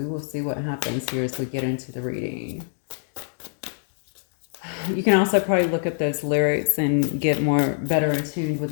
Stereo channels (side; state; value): right; silent; digital silence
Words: will see what happens here as we get into the reading. You can also probably look at those lyrics and get better attuned with